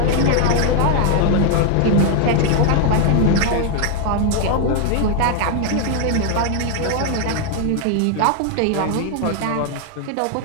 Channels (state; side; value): different; both; correlation 0.00